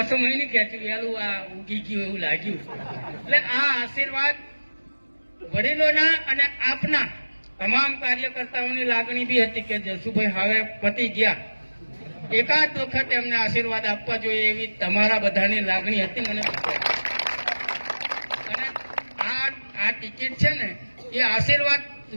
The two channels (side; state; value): both; inverted; correlation -1.00